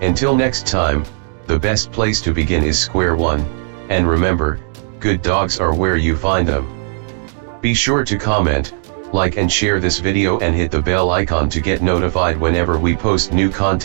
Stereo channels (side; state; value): left; silent; digital silence